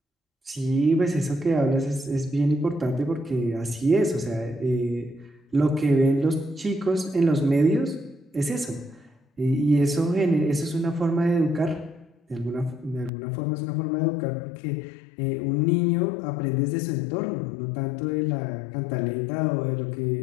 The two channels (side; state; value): right; drops out; at 13.1 s